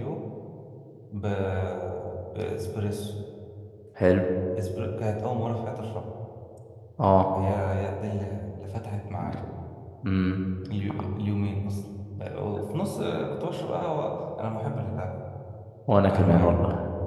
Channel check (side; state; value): both; identical; correlation 1.00